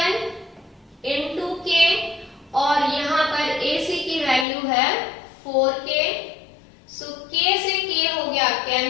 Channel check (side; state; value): right; drops out; at 4.5 s